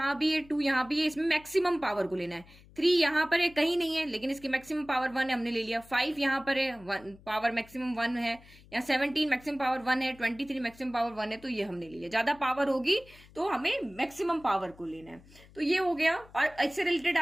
भी है, 2 यहाँ भी है, इसमें मैक्सिमम पावर को लेना है। 3 यहाँ पर है, कहीं नहीं है लेकिन इसकी मैक्सिमम पावर 1 है, हमने ले लिया। 5 यहाँ पर है, पावर मैक्सिमम 1 है। यहाँ 17 मैक्सिमम पावर 1 है, 23 मैक्सिमम पावर 1 है, तो ये हमने ले लिया। ज्यादा पावर होगी तो हमें मैक्सिमम पावर को लेना है। तो ये हो गया। और इससे रिलेटेड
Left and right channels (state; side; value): noise; left; hum, 24 dB below the sound